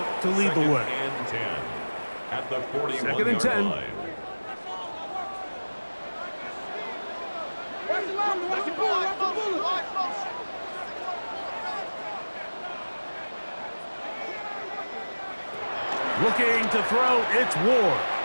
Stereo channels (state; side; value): inverted; both; correlation -1.00